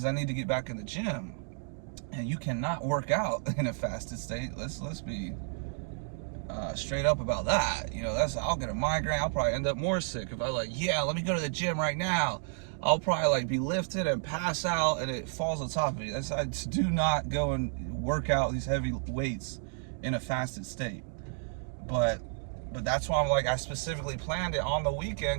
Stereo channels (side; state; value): left; silent; 57 dB below the other